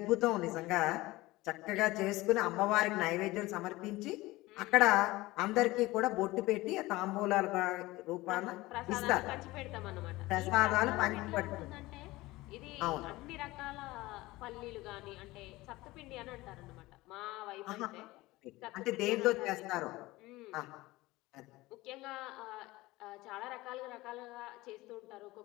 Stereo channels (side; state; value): right; quieter; 19.5 dB